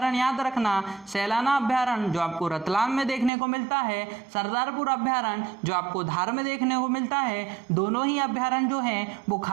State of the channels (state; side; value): drops out; left; at 3.3 s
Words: याद रखना, सैलाना अभ्यारण्य जो आपको रतलाम में देखने को मिलता है, सरदारपुर अभ्यारण्य जो आपको धार में देखने को मिलता है। दोनों ही अभ्यारण्य जो हैं वो